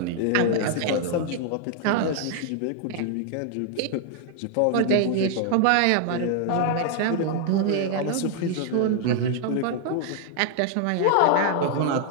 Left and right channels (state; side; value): different; both; correlation 0.00